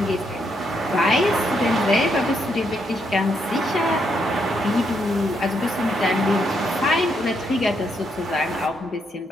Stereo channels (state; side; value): normal; both; correlation 0.77